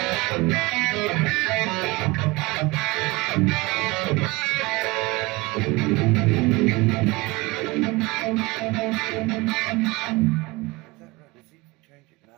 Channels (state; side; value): quieter; left; 23.0 dB